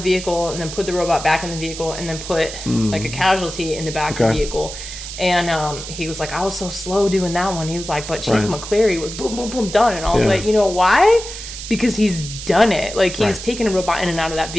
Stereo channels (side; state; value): right; noise; hiss, 10 dB below the sound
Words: vehicle and then put the robot back in the vehicle and then put like a casualty in the back of the vehicle. And he was like, I was so slow doing that one. He was like, but Chief McCleary was boom, boom, boom, done. And I was like, you know why? Because he's done it. Like he's taken a robot in and out of that